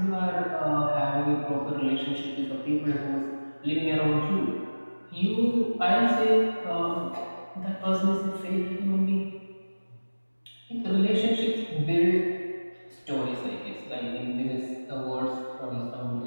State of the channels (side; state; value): both; inverted; correlation -1.00